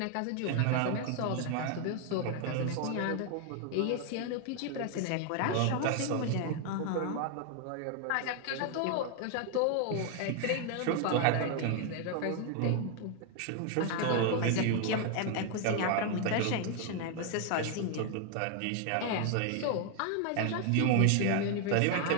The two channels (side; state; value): both; different; correlation 0.00